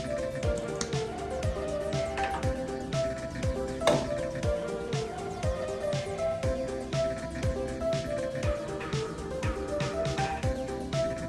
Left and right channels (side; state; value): both; identical; correlation 1.00